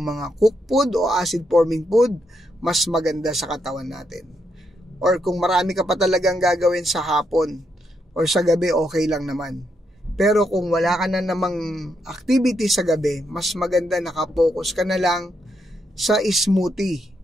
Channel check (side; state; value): both; normal; correlation 0.79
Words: mga cooked food o acid forming food, mas maganda sa katawan natin. Or kung marami ka pa talagang gagawin sa hapon or sa gabi, okay lang naman. Pero kung wala ka na namang activity sa gabi, mas maganda nakapokus ka na lang sa smoothie.